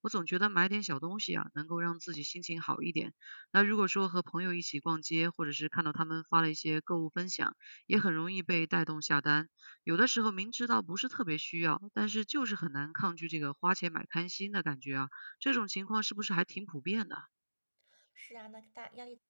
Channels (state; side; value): inverted; both; correlation -1.00